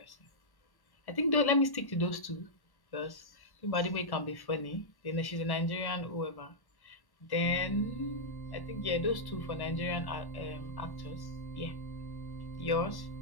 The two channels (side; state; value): right; late; 1.1 ms